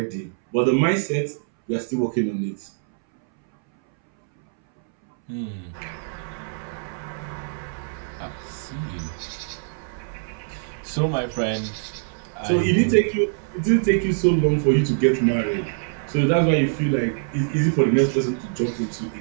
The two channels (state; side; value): silent; left; 63 dB below the other